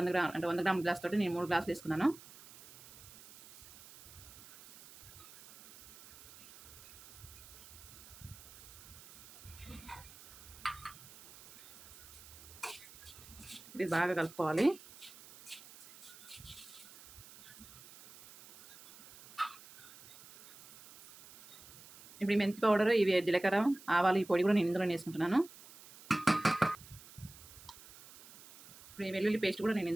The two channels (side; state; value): right; noise; hiss, 19 dB below the sound